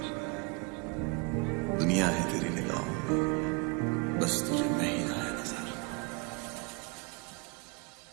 दुनिया है तेरी निगाहों में, बस तुझे मैं ही आया नजर।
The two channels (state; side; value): quieter; left; 32.0 dB